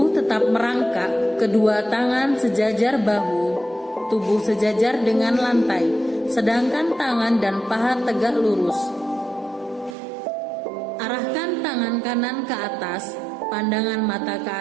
tetap merangkak, kedua tangan sejajar bahu, tubuh sejajar dengan lantai, sedangkan tangan dan paha tegak lurus. Arahkan tangan kanan ke atas, pandangan mata ke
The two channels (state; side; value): drops out; left; at 10.0 s